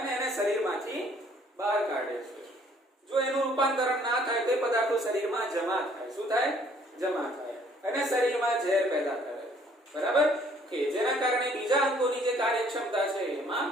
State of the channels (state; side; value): normal; both; correlation 0.60